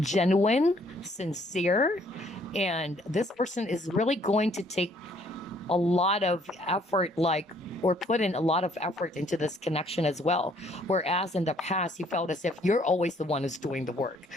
sincere, and this person is really going to take a lot of effort, like, or put in a lot of effort into this connection as well. Whereas in the past, you felt as if you're always the one who's doing the work.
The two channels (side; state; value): both; normal; correlation 0.63